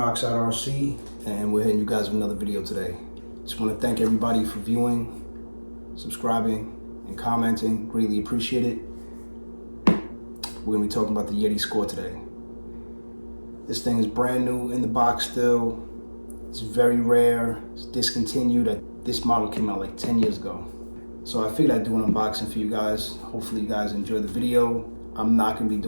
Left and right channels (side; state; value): both; inverted; correlation -1.00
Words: RC, and we're hitting you guys with another video today. Just want to thank everybody for viewing, subscribing, and commenting. Greatly appreciate it. We're going to be talking about the Yeti score today. This thing is brand new in the box still. It's very rare. It's discontinued. This model came out like 10 years ago. So I figured I'd do an unboxing for you guys. Hopefully you guys enjoy the video. I'm not gonna be